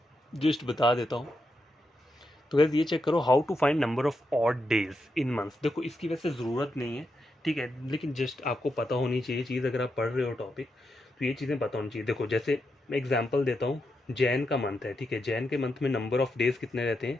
जस्ट बता देता हूँ। तो गाइस ये चेक करो, how to find number of odd days in months. देखो इसकी वैसे ज़रूरत नहीं है, ठीक है, लेकिन जस्ट आपको पता होनी चाहिए चीज़, अगर आप पढ़ रहे हो टॉपिक तो ये चीज़ें पता होनी चाहिए। देखो जैसे मैं एग्जांपल देता हूँ, जैन का मंथ है, ठीक है, जैन के मंथ में नंबर ऑफ डेज़ कितने रहते हैं,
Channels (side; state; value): both; normal; correlation 0.85